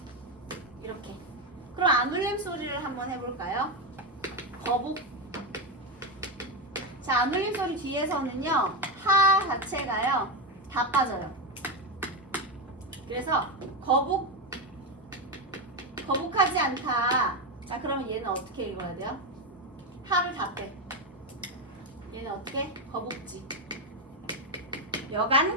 이렇게. 그럼 안 울림소리를 한번 해볼까요? 거북. 자, 안 울림 소리 뒤에서는요, 하 자체가요, 다 빠져요. 그래서 거북하지 않다. 자, 그러면 얘는 어떻게 읽어야 돼요? 하를 다 빼. 얘는 어떻게? 거북지. 여간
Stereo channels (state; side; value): normal; both; correlation 0.10